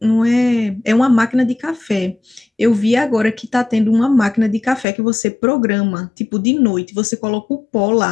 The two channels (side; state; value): right; drops out; at 4.9 s